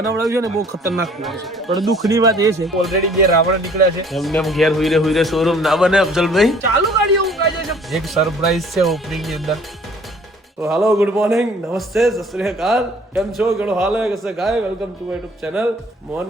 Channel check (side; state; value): both; normal; correlation 0.55